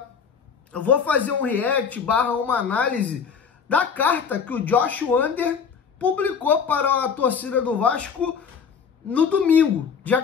Eu vou fazer um react / uma análise da carta que o Josh Wander publicou para a torcida do Vasco no domingo, dia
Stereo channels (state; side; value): quieter; right; 6.5 dB